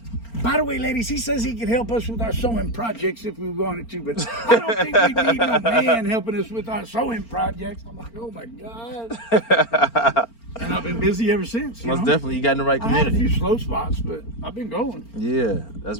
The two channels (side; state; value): right; late; 4.4 ms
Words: By the way, ladies, he says he can help us with our sewing projects if we wanted to, but I don't think we need no man helping us with our sewing projects. I'm like, oh my God. And I've been busy ever since. Most definitely, you got in the right I had a community. few slow spots, but I've been going. Yeah, that's